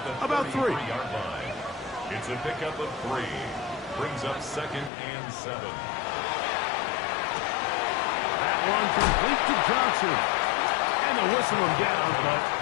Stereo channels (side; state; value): right; drops out; at 4.9 s